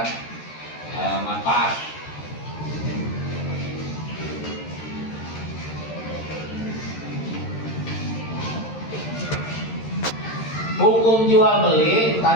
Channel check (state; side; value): late; right; 13 ms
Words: manfaat. Hukum jual beli